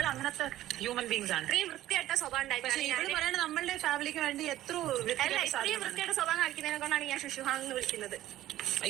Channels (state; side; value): quieter; left; 14.2 dB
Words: അങ്ങനത്തെ ഹ്യൂമൻ ബീങ്സ് ആണ്. വൃത്തിയായിട്ട സ്വഭാവം. പക്ഷെ ഇവര് പറയണ നമ്മളുടെ ഫാമിലിക്ക് വേണ്ടി എത്ര വൃത്തിയായിട്ട സ്വഭാവം കാണിക്കുന്നതിനെ കൊണ്ടാണ് ഞാൻ ശുശുഹാങ് എന്ന് വിളിക്കുന്നത്.